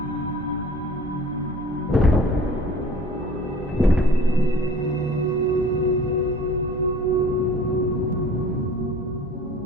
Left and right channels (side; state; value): both; normal; correlation 0.47